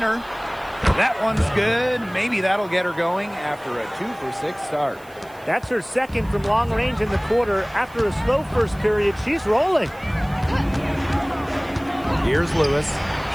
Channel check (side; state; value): right; noise; hiss, 26 dB below the sound